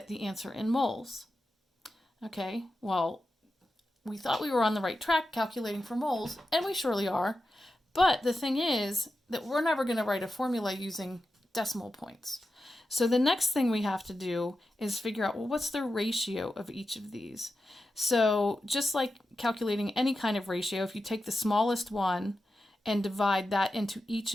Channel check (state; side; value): normal; both; correlation 0.91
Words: the answer in moles. Okay, well, we thought we were on the right track calculating for moles, and we surely are. But the thing is that we're never going to write a formula using decimal points. So the next thing we have to do is figure out, well, what's the ratio of each of these? So just like calculating any kind of ratio, if you take the smallest one and divide that into each